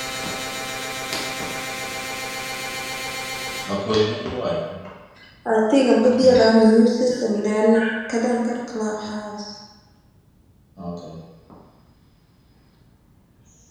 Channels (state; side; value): identical; both; correlation 1.00